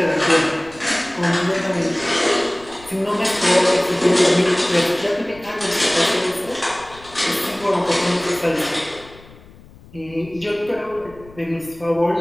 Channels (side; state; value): left; noise; rumble, 22 dB below the sound